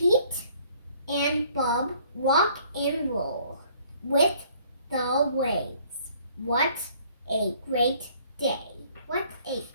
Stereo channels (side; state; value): both; inverted; correlation -0.59